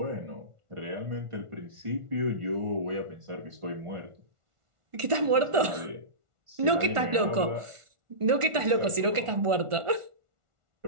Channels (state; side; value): late; left; 1.4 ms